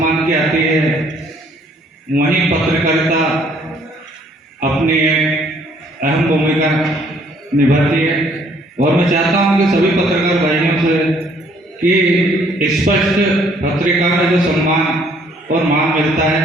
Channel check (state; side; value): normal; both; correlation 0.63